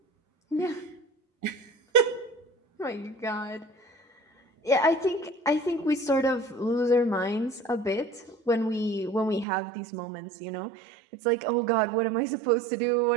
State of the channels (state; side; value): drops out; left; at 9.5 s